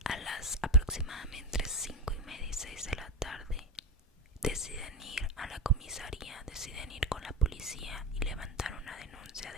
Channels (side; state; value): both; normal; correlation 0.16